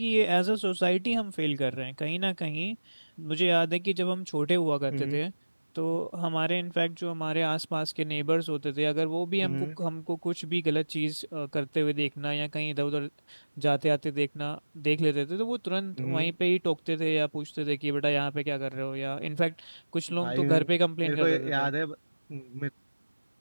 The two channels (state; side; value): inverted; both; correlation -1.00